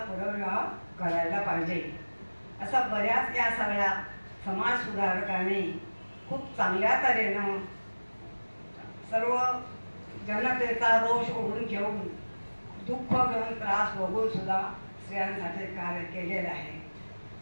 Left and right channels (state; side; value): inverted; both; correlation -1.00